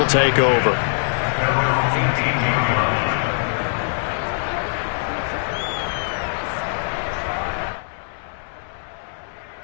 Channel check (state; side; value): silent; right; digital silence